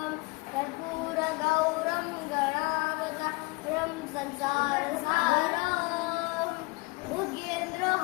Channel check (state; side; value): quieter; right; 25.8 dB